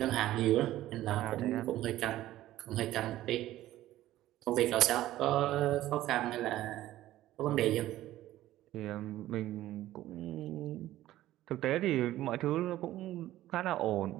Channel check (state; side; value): quieter; left; 14.6 dB